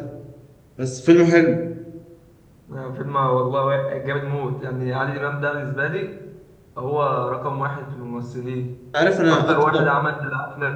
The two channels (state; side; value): identical; both; correlation 1.00